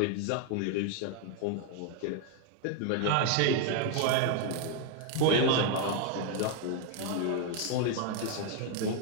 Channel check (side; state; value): both; different; correlation 0.01